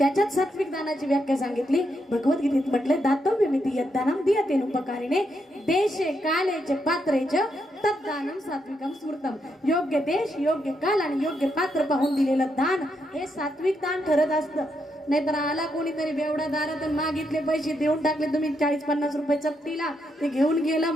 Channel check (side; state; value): both; normal; correlation 0.80